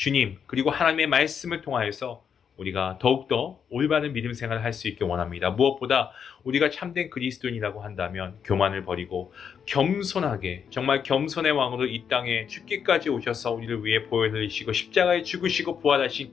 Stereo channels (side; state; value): right; quieter; 7.4 dB